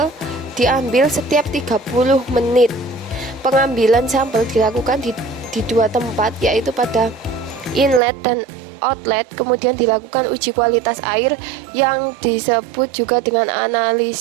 diambil setiap 30 menit. Pengambilan sampel dilakukan di 2 tempat, yaitu pada inlet dan outlet. Kemudian dilakukan uji kualitas air yang disebut juga dengan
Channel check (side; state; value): left; drops out; at 8.0 s